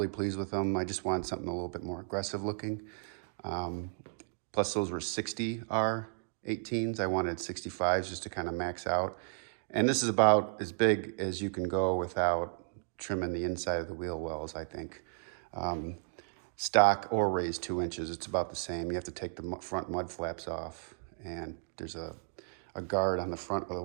pleased with them. I just wanted something a little bit more aggressive looking. Plus those were 60 R18s. I wanted 65s just to kind of max out. And this is about as big as you can go without trimming the inside of the wheel wells, I think. Stock or raised 2 inches, it's about the same. You have to take the front mud flaps off, and there's a guard on the front of the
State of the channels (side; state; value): left; silent; digital silence